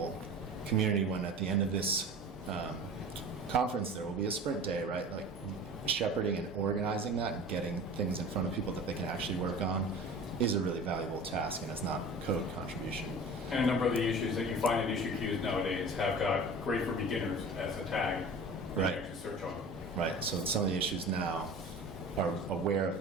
community when at the end of this conference there will be a sprint day, right? Like shepherding and organizing that and getting things in front of people that they can actually work on is a really valuable task, and it's not code contribution. And a number of the issues that you find in issue queues nowadays have got great for beginners as a tag. Right. You can actually search on. Right, so some of the issues now are aware of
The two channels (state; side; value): normal; both; correlation 0.39